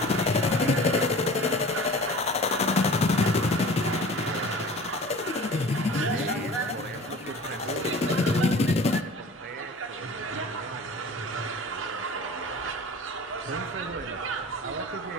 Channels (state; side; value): normal; both; correlation 0.41